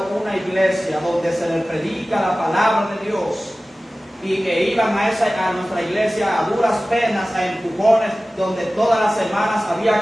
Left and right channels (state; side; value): normal; both; correlation 0.97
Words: una iglesia donde se les predica la palabra de Dios y que iban a nuestra iglesia a duras penas, a empujones, donde todas las semanas